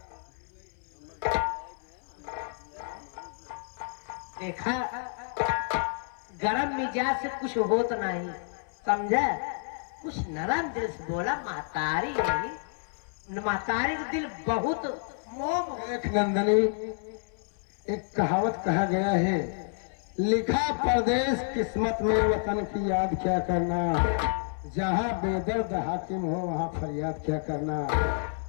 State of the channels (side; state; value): right; silent; 58 dB below the other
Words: देखा गरम मिजाज से कुछ होता नहीं समझा। कुछ नरम दिल से बोला महतारी नहीं, महतारी का दिल बहुत मोह। एक नंदनी, एक कहावत कहा गया है, लिखा परदेश किस्मत में वतन की याद क्या करना। जहाँ बेदर्द हाकिम हो वहाँ फरियाद क्या करना।